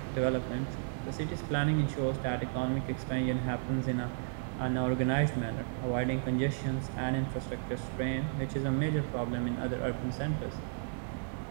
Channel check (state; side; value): silent; left; digital silence